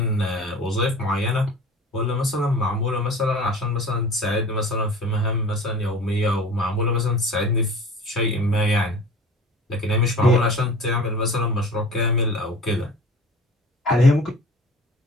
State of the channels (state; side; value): normal; both; correlation 0.41